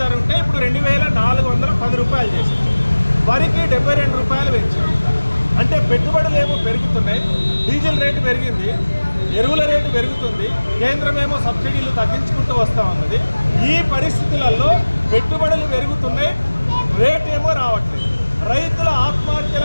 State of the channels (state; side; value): inverted; both; correlation -1.00